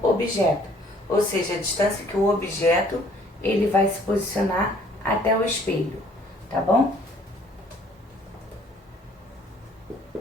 objeto, ou seja, a distância que o objeto ele vai se posicionar até o espelho, tá bom?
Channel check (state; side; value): normal; both; correlation 0.59